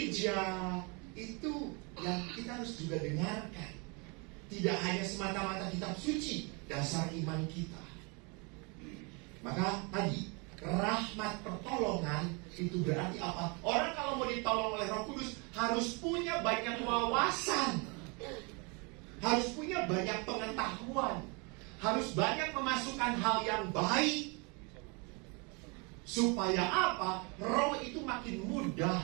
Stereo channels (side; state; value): left; quieter; 31.3 dB